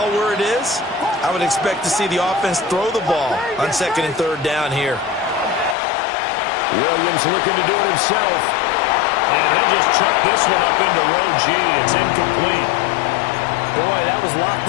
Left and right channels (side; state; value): right; drops out; at 5.8 s